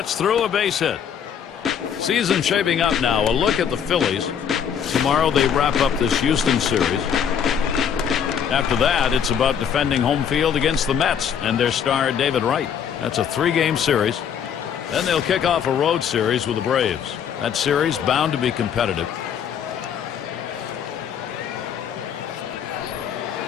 through, a base hit. Season shaping up now. A look at the Phillies. Tomorrow they wrap up this Houston series. After that, it's about defending home field against the Mets and their star David Wright. That's a 3-game series. Then they'll kick off a road series with the Braves. That series bound to be competitive.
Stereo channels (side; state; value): right; quieter; 8.1 dB